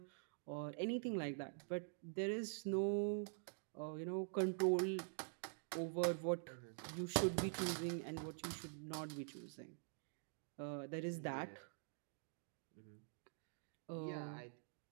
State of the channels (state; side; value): silent; left; digital silence